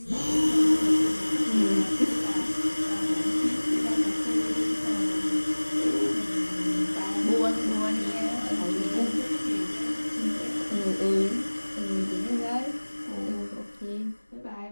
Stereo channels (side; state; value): both; inverted; correlation -1.00